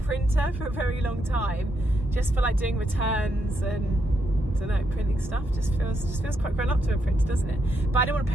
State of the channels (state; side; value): normal; both; correlation 0.80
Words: for a very long time, just for like doing returns and, I don't know, printing stuff. Just feels quite grown up to a printer, doesn't it? But I don't want to